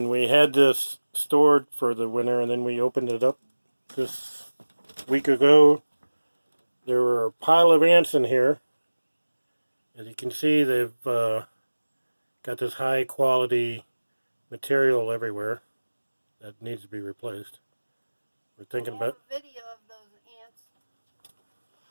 we had this stored for the winter and then we opened it up this week ago, there were a pile of ants in here. As you can see, they've got this high quality material everywhere that needs to be replaced. We're thinking about a video of those ants.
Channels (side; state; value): both; inverted; correlation -1.00